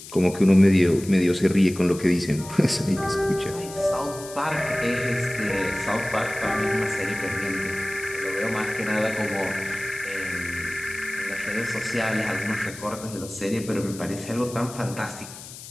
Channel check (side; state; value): left; noise; hiss, 14 dB below the sound